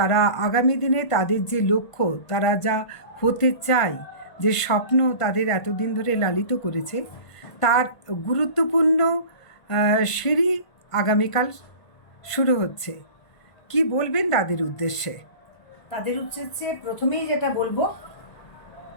আগামী দিনে তাদের যে লক্ষ্য, তারা যা হতে চায়, যে স্বপ্ন তাদের এতদিন ধরে লালিত করেছে, তার গুরুত্বপূর্ণ সিঁড়ি আগামীকাল শুরু হচ্ছে। কি বলবেন তাদের উদ্দেশ্যে? তাদের উদ্দেশ্যে প্রথমেই যেটা বলবো,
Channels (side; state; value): right; late; 1.5 ms